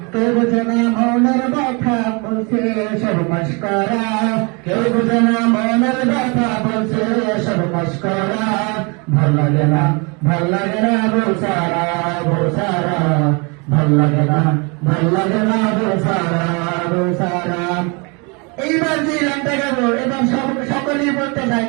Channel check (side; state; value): left; quieter; 31.0 dB